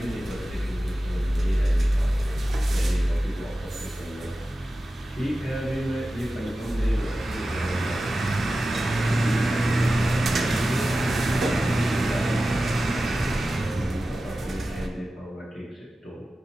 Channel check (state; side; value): normal; both; correlation 0.94